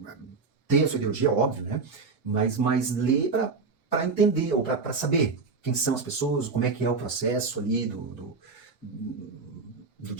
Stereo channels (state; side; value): quieter; left; 4.5 dB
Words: ter a sua ideologia, óbvio, né? Mas ler para entender, ou para saber quem são as pessoas, como é que é o processo ali do